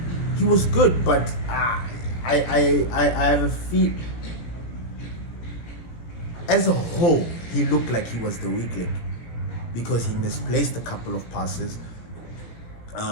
he was good, but I have a feel. As a whole, he looked like he was the weak link because he misplaced a couple of passes.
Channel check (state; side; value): late; right; 17 ms